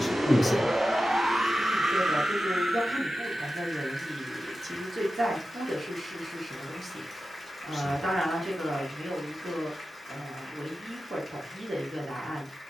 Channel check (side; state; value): both; normal; correlation 0.93